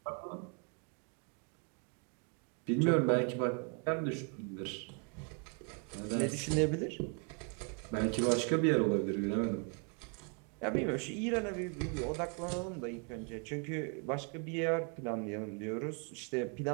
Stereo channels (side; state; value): left; quieter; 37.5 dB